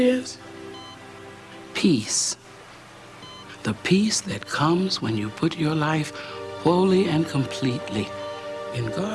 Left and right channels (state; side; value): identical; both; correlation 1.00